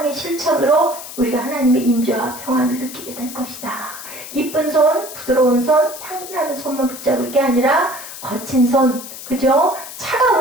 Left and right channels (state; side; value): noise; left; hiss, 12 dB below the sound